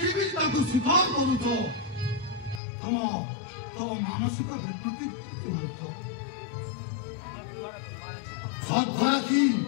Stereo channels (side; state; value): right; drops out; at 2.6 s